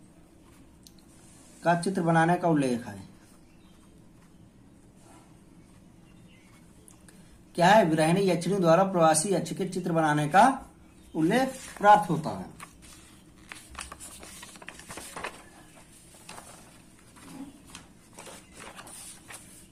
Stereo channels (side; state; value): both; identical; correlation 1.00